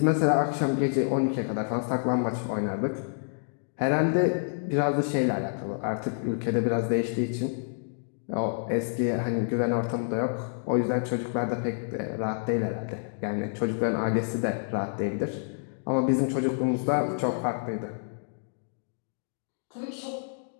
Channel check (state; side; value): silent; right; digital silence